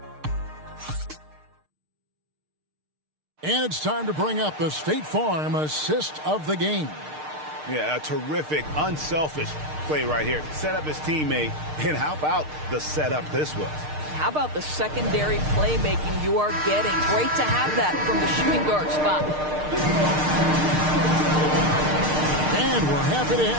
And it's time to bring up the State Farm assist of the game. Yeah, a terrific, unselfish play right here. Set up his teammate, and how about the setup this was? How about the secondary playmaking you are getting? Great to have that from the shooting guard spot. And we're happy to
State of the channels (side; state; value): left; late; 6.6 ms